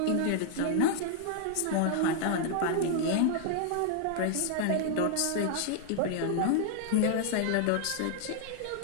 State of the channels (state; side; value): different; both; correlation -0.01